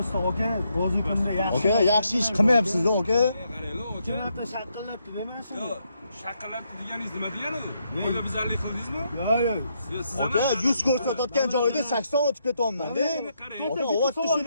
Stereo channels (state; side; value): inverted; both; correlation -0.78